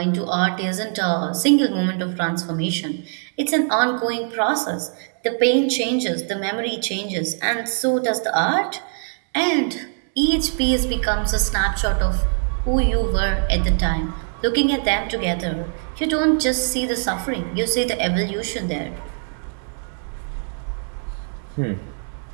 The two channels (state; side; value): silent; left; 64 dB below the other